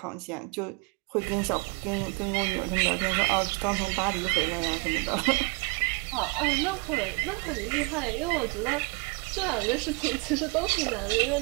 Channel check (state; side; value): quieter; left; 31.0 dB